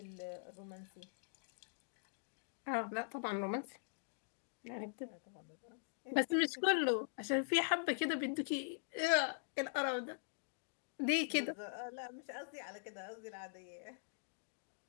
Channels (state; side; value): silent; right; digital silence